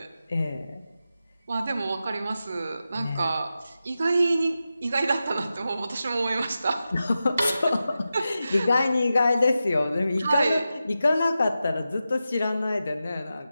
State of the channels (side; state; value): both; inverted; correlation -0.91